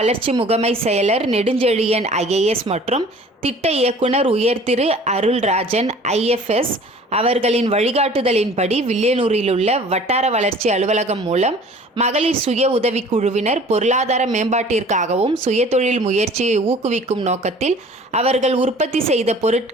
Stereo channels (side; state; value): both; normal; correlation 0.48